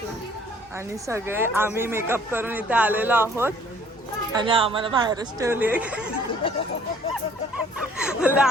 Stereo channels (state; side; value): normal; both; correlation 0.58